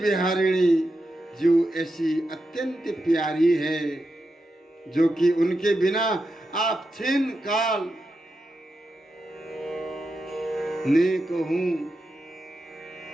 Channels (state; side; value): normal; both; correlation 0.88